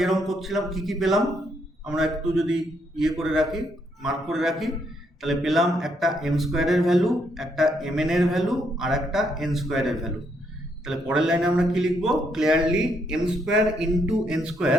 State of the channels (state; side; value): normal; both; correlation 0.74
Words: করছিলাম কি কি পেলাম আমরা একটু যদি করে রাখি, মার্ক করে রাখি, তাহলে পেলাম একটা এম স্কোয়ারের ভ্যালু, একটা এম এন এর ভ্যালু, আর একটা এন স্কোয়ারের ভ্যালু। তাহলে পরের লাইনে আমরা কি লিখবো? Clearly M square into N